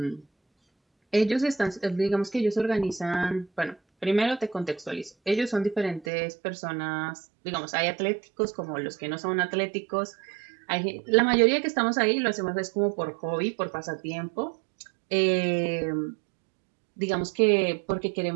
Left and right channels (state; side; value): drops out; left; at 6.1 s